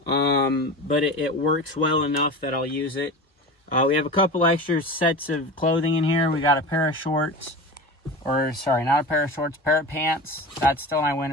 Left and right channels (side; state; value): both; normal; correlation 0.31